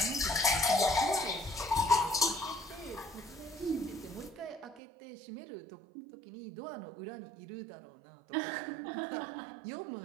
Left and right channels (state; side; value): drops out; left; at 4.8 s